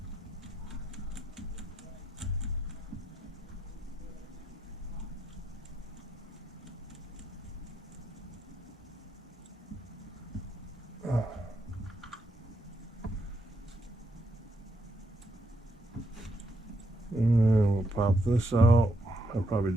and we'll pop this out. I'll probably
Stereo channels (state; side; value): normal; both; correlation 0.78